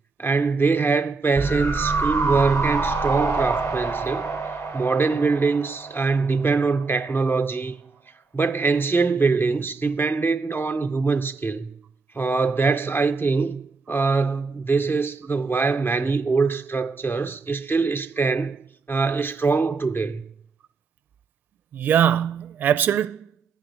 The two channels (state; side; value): quieter; left; 4.3 dB